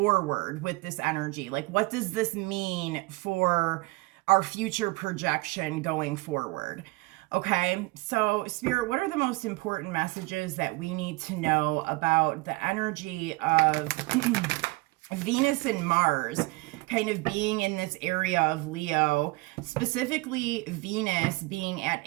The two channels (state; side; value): quieter; left; 23.8 dB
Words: with this energy. Like, what does this mean for our future projection going forward? Okay, so Spirit, what are the most important messages that we need to know about the energy of Venus and Mars kind of being in this area of Leo, specifically Venus being at